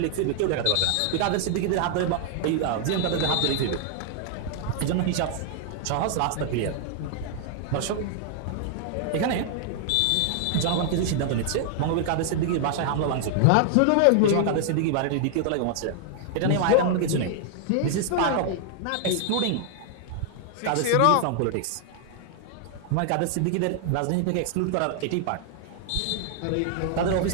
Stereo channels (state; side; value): different; both; correlation 0.00